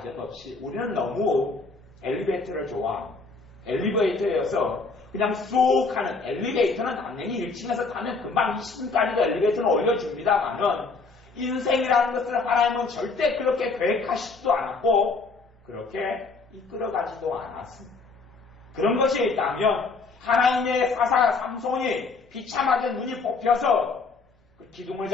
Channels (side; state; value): right; quieter; 4.2 dB